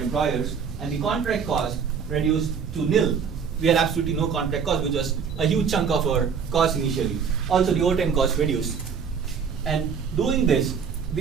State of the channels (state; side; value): quieter; left; 6.5 dB